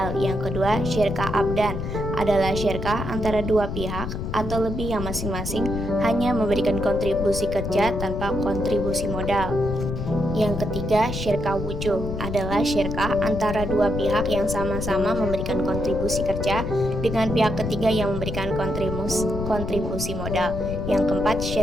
Yang kedua, syirkah abdan adalah syirkah antara dua pihak atau lebih yang masing-masing hanya memberikan kontribusi kerja tanpa kontribusi modal. Yang ketiga, syirkah wujuh adalah syirkah antara dua pihak yang sama-sama memberikan kontribusi kerja dengan pihak ketiga yang memberikan kontribusi modal. Yang keempat,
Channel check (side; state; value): left; noise; rumble, 5 dB below the sound